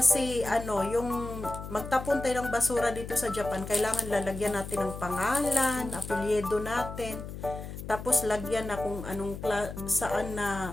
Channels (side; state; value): left; noise; hum, 9 dB below the sound